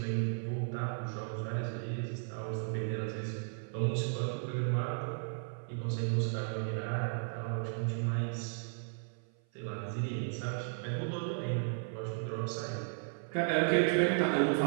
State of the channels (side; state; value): left; silent; 54 dB below the other